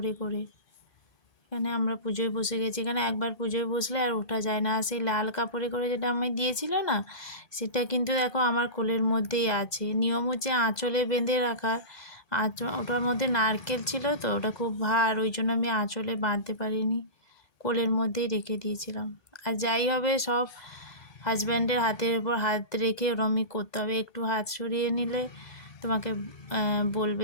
করে। এখানে আমরা পুজোয় বসে গেছি, এখানে একবার পুজোয় বসলে আর ওঠা যায় না। সেই লাল কাপড়ে করে যেটা আমি দিয়েছিল না, সেটা কিন্তু দেখো আমার কোলের মধ্যেই আছে। নিয়ম হচ্ছে আঁচলে বেঁধে রাখা, ওটার মধ্যে নারকেল ছিল তো, ওটা খুব ভার, ওই জন্য আমি আঁচলে বাঁধতে পারিনি, কোলের মধ্যেই রেখে দিয়েছিলাম। আর যাই হবে সব হাজব্যান্ডের হাতের উপর হাত রেখে ওরমই করতে হবে। একটু হাত সরিয়ে নিলে তোমাকে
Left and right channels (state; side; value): late; right; 1.2 ms